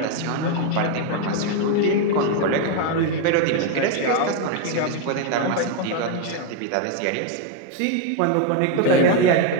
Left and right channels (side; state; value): both; different; correlation 0.01